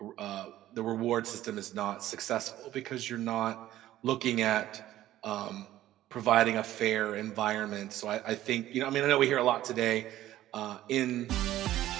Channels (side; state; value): left; quieter; 13.9 dB